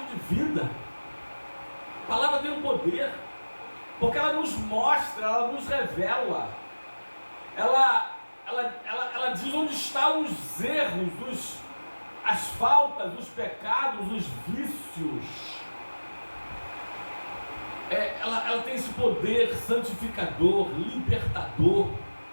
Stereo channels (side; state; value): both; inverted; correlation -1.00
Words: de vida. A palavra tem um poder, porque ela nos mostra, ela nos revela, ela diz onde estão os erros, as faltas, os pecados, os vícios. Ela tem esse poder santificador, libertador.